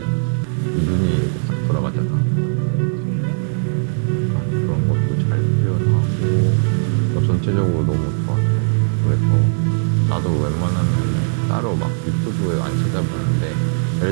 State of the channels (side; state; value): left; silent; digital silence